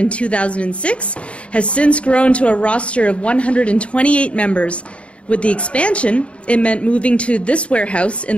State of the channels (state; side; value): late; right; 0.061 ms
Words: 2006, has since grown to a roster of 128 members. With the expansion, it meant moving to this warehouse